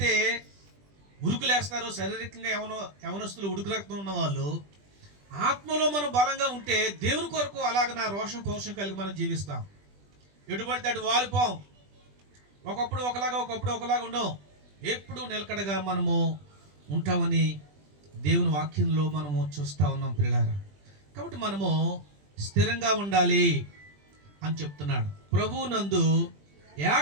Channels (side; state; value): left; late; 20 ms